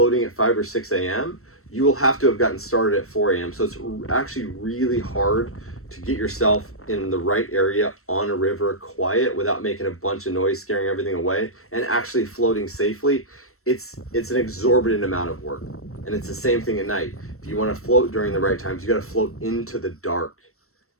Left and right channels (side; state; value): right; late; 0.63 ms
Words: at 5 or 6 a.m., you will have to have gotten started at 4 a.m. So it's actually really hard to get yourself in the right area on a river, quiet, without making a bunch of noise, scaring everything away, and actually floating safely. It's an exorbitant amount of work. And it's the same thing at night. If you want to float during the right times, you got to float into the dark.